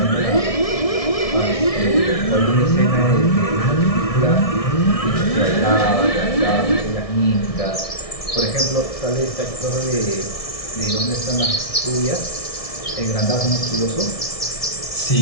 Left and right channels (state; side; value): late; right; 1.6 ms